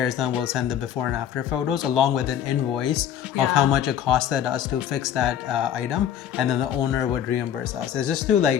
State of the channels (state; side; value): quieter; right; 9.8 dB